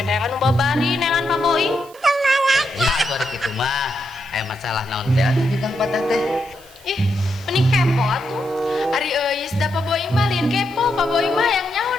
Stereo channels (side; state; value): right; noise; hiss, 24 dB below the sound